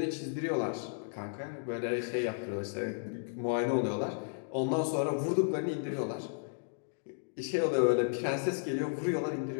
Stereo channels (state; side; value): silent; right; digital silence